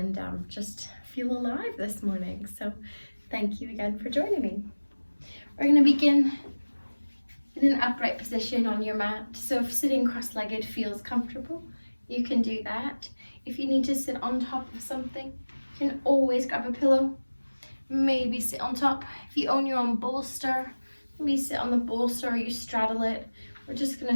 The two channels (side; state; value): both; inverted; correlation -1.00